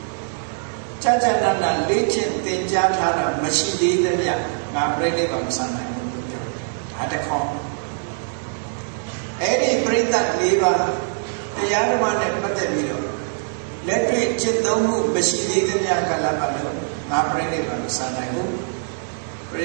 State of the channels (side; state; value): left; silent; digital silence